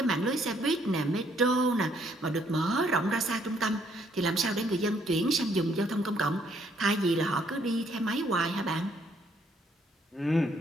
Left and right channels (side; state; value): both; normal; correlation 0.68